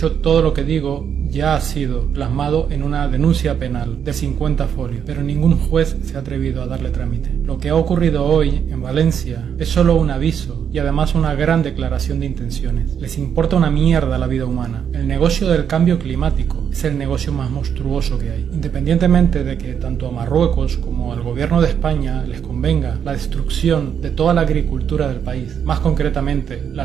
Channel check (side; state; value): left; quieter; 8.0 dB